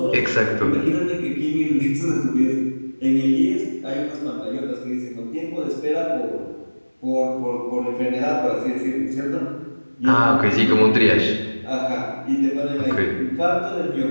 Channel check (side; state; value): both; inverted; correlation -1.00